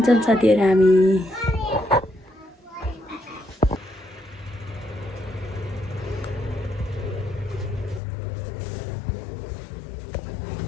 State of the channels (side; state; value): right; drops out; at 8.0 s